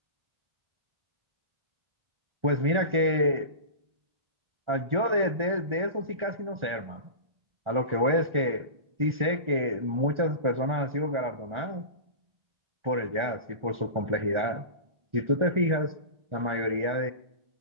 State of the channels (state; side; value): late; left; 1.4 ms